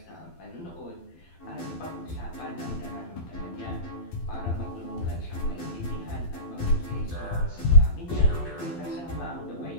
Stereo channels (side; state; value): right; late; 12 ms